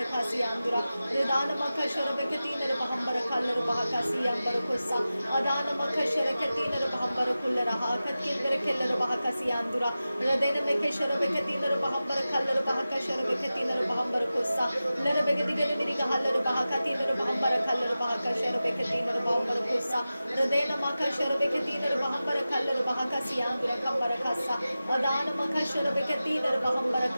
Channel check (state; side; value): inverted; both; correlation -0.95